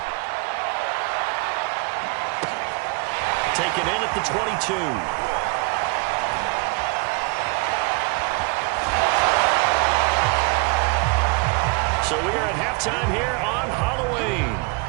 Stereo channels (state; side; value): quieter; left; 32.0 dB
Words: Taken in at the 22. So we are at halftime here on Halloween.